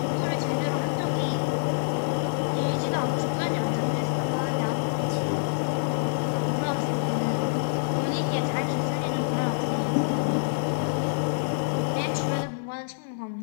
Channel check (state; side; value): silent; right; 56 dB below the other